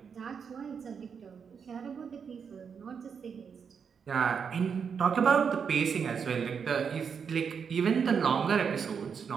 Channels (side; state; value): left; quieter; 6.6 dB